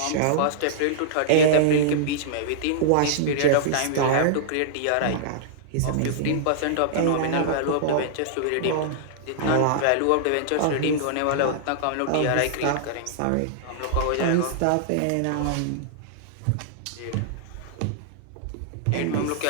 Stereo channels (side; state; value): both; different; correlation -0.02